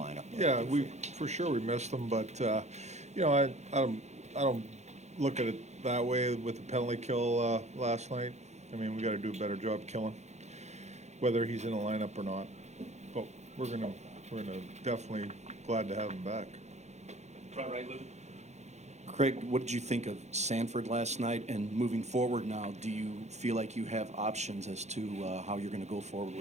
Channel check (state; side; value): late; left; 0.33 ms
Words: Yeah, for sure we missed him, but I don't look at it that way with the penalty kill last night. I mean, we got to do a better job killing, whether he's in the lineup or not. But we're gonna definitely glad to have him back. Front right, Lou. Craig, what did you think of Sanford last night? And moving forward now, do you feel like you have options as to how you're going to go forward